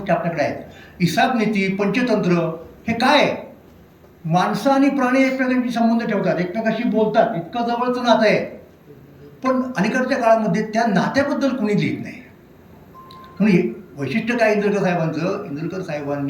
आपल्याकडे आहेत. हिसाब नीती, पंचतंत्र, हे काय आहे? माणसं आणि प्राणी एकमेकांशी संबंध ठेवतात, एकमेकांशी बोलतात, इतकं जवळचं नातं आहे. पण अलीकडच्या काळामध्ये त्या नात्याबद्दल कुणी लिहित नाही. म्हणून वैशिष्ट्य काय इंदुरकर साहेबांचं, इंदुरकर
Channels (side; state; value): both; identical; correlation 1.00